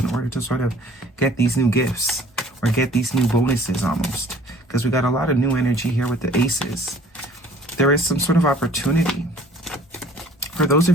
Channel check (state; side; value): normal; both; correlation 0.52